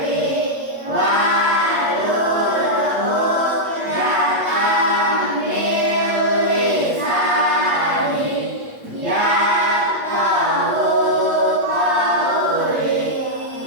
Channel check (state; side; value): late; left; 8.3 ms